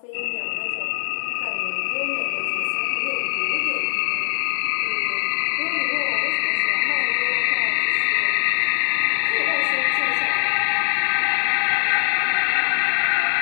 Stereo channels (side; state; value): right; silent; 62 dB below the other